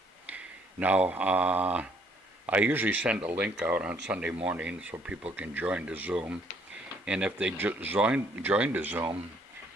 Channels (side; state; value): both; normal; correlation 0.65